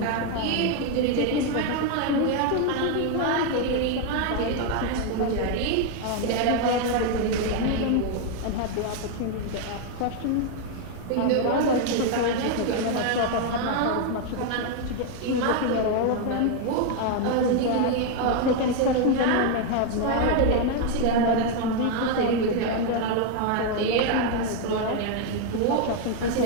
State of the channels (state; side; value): different; both; correlation 0.01